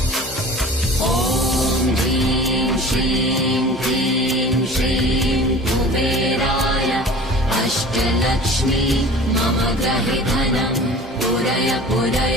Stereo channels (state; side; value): normal; both; correlation 0.42